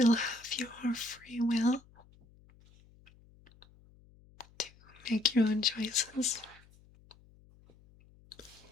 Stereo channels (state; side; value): noise; left; hum, 27 dB below the sound